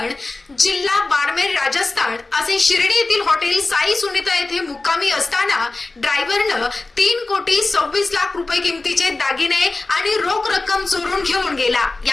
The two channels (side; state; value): right; quieter; 3.3 dB